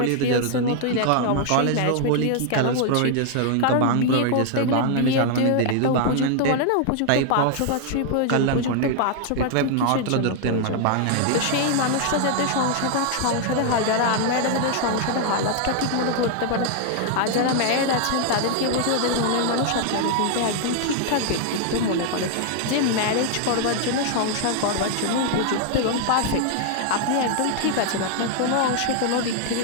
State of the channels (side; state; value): both; different; correlation 0.00